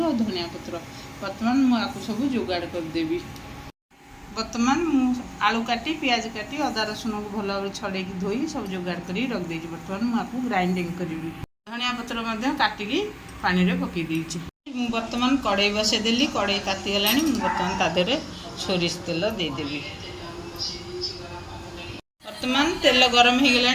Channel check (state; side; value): identical; both; correlation 1.00